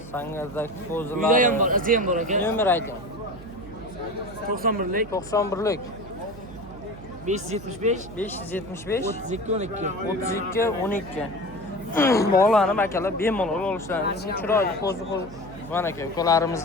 Sangerdagi Uyda qo'zilari. ham bor, izi ham bor aka. Nomer ayting. 91lik 91lik 575 575 32 12. 32 12. Bog'lanib akalar bemalol olishlaringiz chiroyli qo'zi mana aka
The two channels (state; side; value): noise; right; hum, 17 dB below the sound